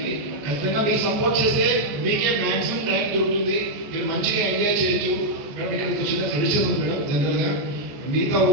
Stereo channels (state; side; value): late; left; 14 ms